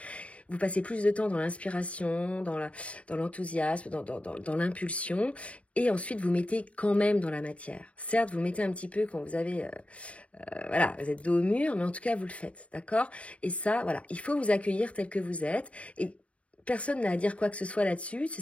Vous passez plus de temps dans l'inspiration, dans l'enthousiasme, dans l'impulsion, et ensuite vous mettez quand même dans la matière. Certes, vous mettez un petit peu quand vous avez, voilà, vous êtes dos au mur, mais en tout cas, vous le faites, d'accord? Et ça, voilà, il faut vous accueillir tel que vous êtes, et personne n'a à dire quoi que ce soit là-dessus,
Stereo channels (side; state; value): right; late; 0.064 ms